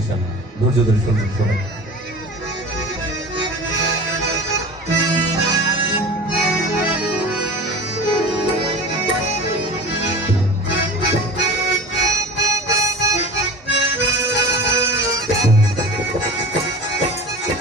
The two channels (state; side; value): normal; both; correlation 0.36